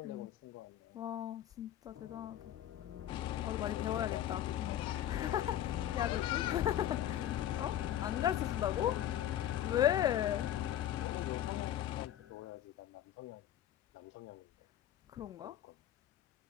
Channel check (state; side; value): quieter; right; 11.8 dB